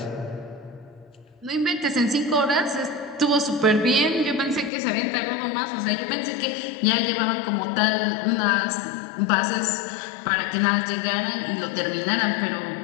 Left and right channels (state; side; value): drops out; right; at 4.7 s